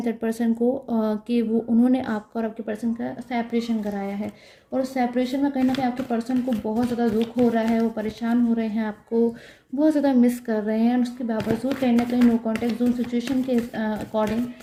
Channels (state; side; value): identical; both; correlation 1.00